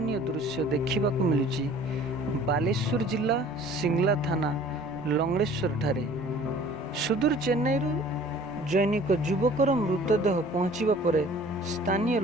ଦୃଶ୍ୟ ଦେଖିବାକୁ ମିଳୁଛି ବାଲେଶ୍ୱର ଜିଲ୍ଲା ସିଙ୍ଗଲା ଥାନା ଲଙ୍ଗଳେଶ୍ୱରଠାରେ। ସୁଦୂର ଚେନ୍ନାଇରୁ ଜୈନିକ ଯୁବକର ମୃତଦେହ ପହଞ୍ଚିବା ପରେ ସ୍ଥାନୀୟ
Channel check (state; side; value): normal; both; correlation 0.49